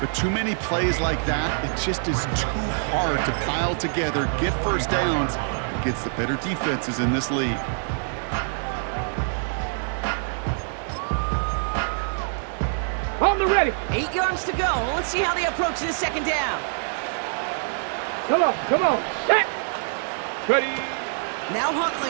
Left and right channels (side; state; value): left; silent; 62 dB below the other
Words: But too many plays like that, it just is too hard to pile together, get first downs against the better defenses in this league. On the ready. 8 yards to go. Let's see how they approach this second down. Come on. Set. Ready. Now